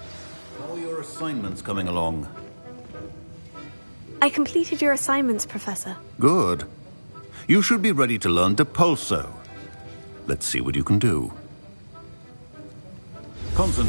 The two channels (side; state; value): both; inverted; correlation -1.00